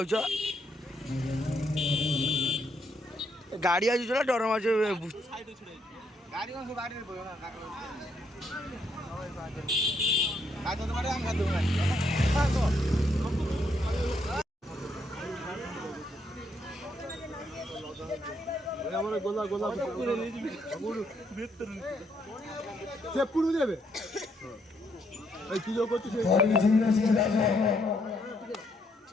गाड़ी आज चला डर मार गाड़ी कौन से गाड़ी में আমার গোলা গোলা সে পুরো দেবে এই কি যোগ করছিস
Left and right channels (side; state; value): both; normal; correlation 0.74